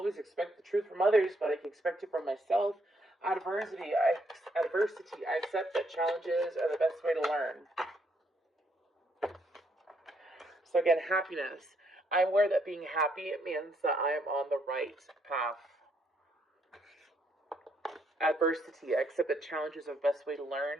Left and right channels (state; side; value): normal; both; correlation 0.73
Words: expect the truth from others, but I can expect it from myself. Adversity. I accept that challenges are the best way to learn. So again, happiness. I'm aware that being happy means that I am on the right path. Adversity. I accept that challenges are the best way to learn.